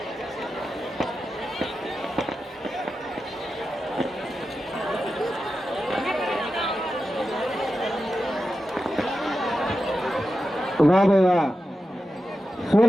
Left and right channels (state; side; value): normal; both; correlation 0.90